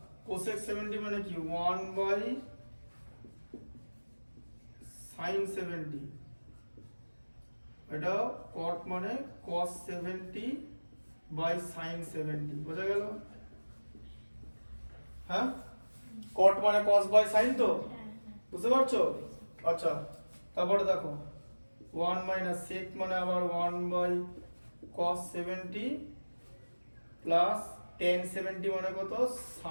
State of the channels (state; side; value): inverted; both; correlation -1.00